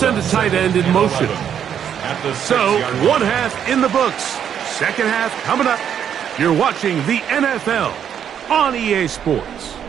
a tight end in motion. So, 1 half in the books. Second half coming up. You're watching the NFL on EA Sports.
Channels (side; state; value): left; quieter; 8.8 dB